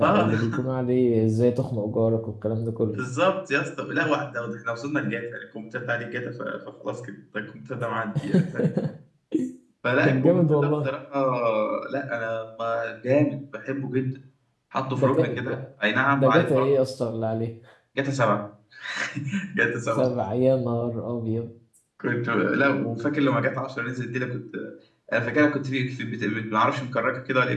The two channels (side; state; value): both; identical; correlation 1.00